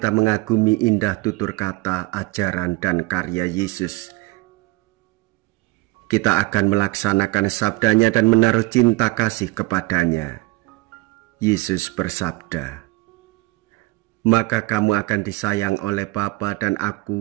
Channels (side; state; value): left; quieter; 22.4 dB